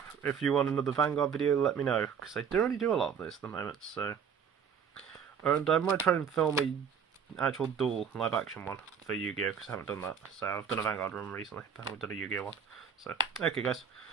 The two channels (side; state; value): left; quieter; 7.1 dB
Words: If you want another Vanguard video, let me know, because I don't really do a lot of this at the moment, so... And I might try and film a actual dual live action one for Yu-Gi-Oh, because I haven't done that. So I've done a Vanguard run recently, but I haven't done a Yu-Gi-Oh one. So, okay guys,